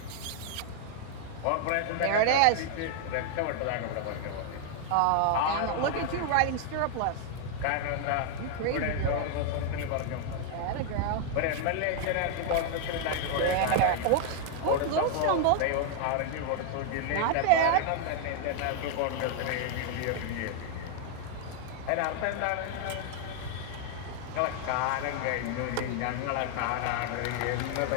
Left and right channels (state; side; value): different; both; correlation 0.00